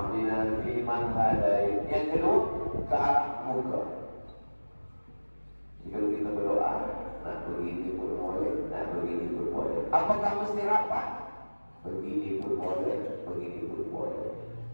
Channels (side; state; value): both; inverted; correlation -1.00